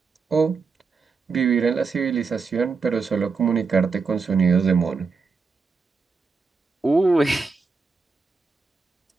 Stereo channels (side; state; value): left; quieter; 4.7 dB